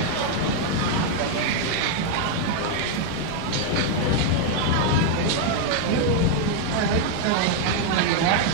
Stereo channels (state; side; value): different; both; correlation 0.01